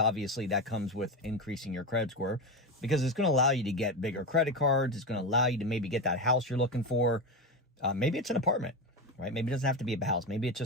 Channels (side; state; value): both; normal; correlation 0.16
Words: that comes with increasing your credit score, because it's going to allow you to get bigger credit cards. It's going to allow you to maybe get that house you're looking for. Maybe it's an apartment, right? Maybe it doesn't have to be a house. Maybe it's